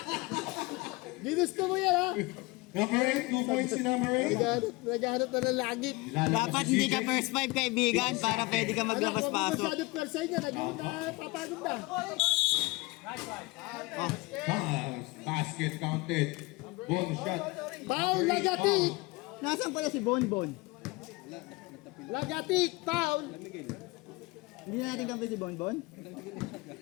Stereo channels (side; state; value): right; quieter; 24.1 dB